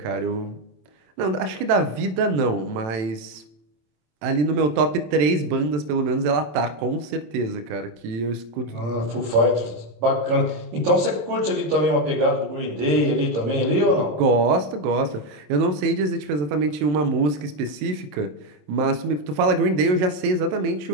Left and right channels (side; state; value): left; late; 27 ms